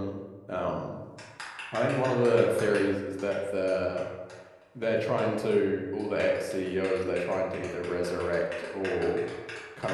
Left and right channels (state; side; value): identical; both; correlation 1.00